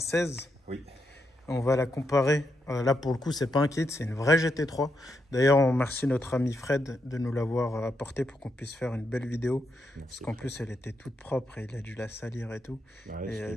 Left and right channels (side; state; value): both; normal; correlation 0.82